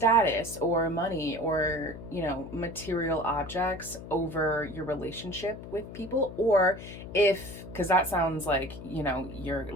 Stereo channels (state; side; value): noise; left; hum, 12 dB below the sound